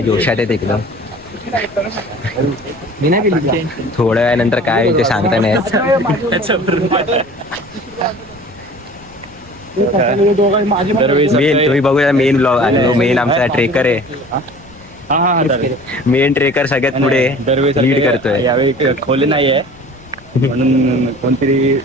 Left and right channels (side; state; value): left; noise; rumble, 25 dB below the sound